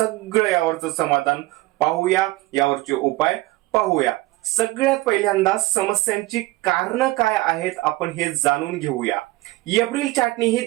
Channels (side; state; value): left; quieter; 19.8 dB